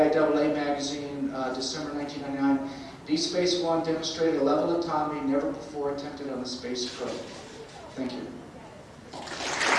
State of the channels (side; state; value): both; identical; correlation 1.00